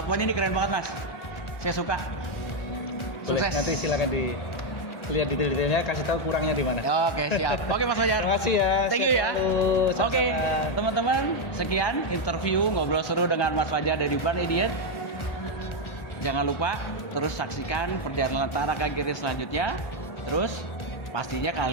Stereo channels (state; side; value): late; right; 1.4 ms